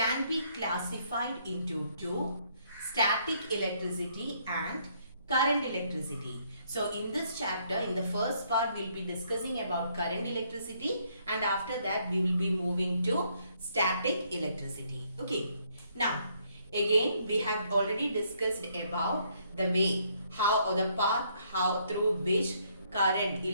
be classified into two: static electricity and current electricity. So in this chapter, in the first part, we'll be discussing about current electricity, and after that we will be moving to static electricity. Okay. Now again, we have already discussed about the way, how, or the path how through which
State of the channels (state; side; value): inverted; both; correlation -0.69